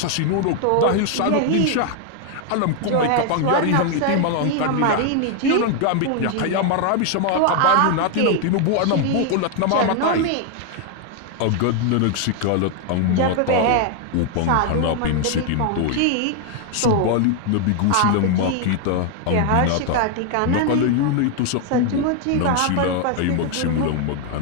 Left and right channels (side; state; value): both; different; correlation 0.00